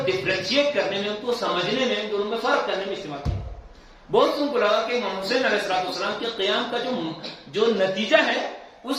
ڈفرینشیٹ کرنے میں, ان کو سمجھنے میں, دونوں میں فرق کرنے میں استعمال کیا. بہت سن کو لگا کہ امام حسین علیہ السلام کے قیام کا جو نتیجہ ہے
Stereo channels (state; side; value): identical; both; correlation 1.00